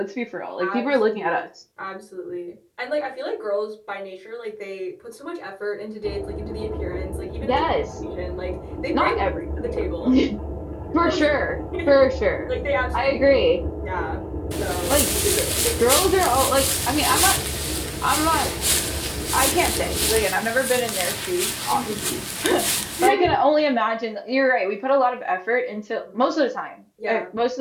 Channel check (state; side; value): identical; both; correlation 1.00